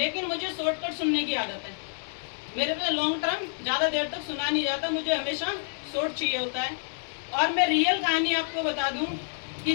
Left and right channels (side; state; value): right; silent; digital silence